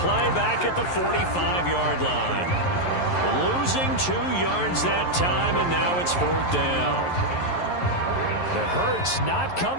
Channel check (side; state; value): right; late; 11 ms